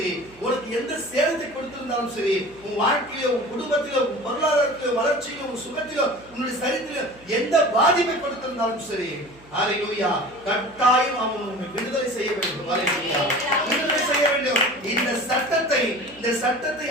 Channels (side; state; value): right; noise; hum, 25 dB below the sound